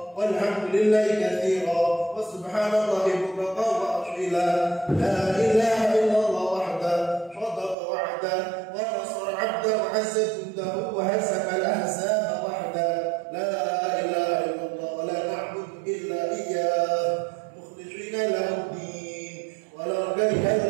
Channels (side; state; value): left; drops out; at 7.8 s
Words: walhamdulillahi katsira, wa subhanallahi bukratan wa asila. La ilaha illallah wahda, sadaqa wa'da, wa nasara 'abda, wa 'azza jundahu, wa hasaka al-ahzaba wahda. La ilaha illallah, wa la na'budu illa iyyah, mukhlishina lahu din, wa la kariha